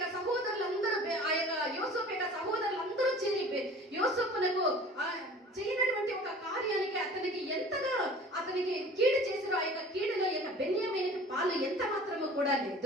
సహోదరులందరూ ఆ యొక్క యోసేపు యొక్క సహోదరులందరూ చేరి యోసేపునకు చేయనటువంటి ఒక కార్యానికి అతనికి ఎంతగా అతనికి కీడు చేశారో ఆ యొక్క కీడులో యొక్క బెన్యామీనుకి పాలు ఎంత మాత్రము కూడా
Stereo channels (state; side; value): normal; both; correlation 0.45